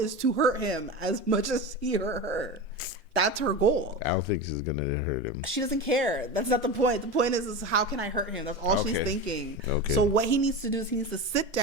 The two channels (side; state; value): both; normal; correlation 0.25